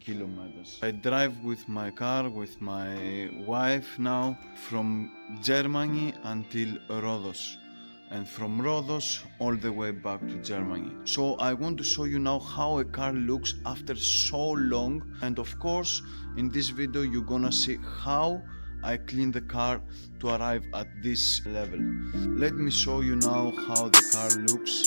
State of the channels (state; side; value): inverted; both; correlation -1.00